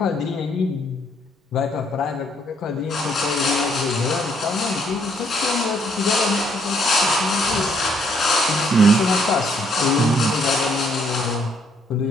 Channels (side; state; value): both; normal; correlation 0.69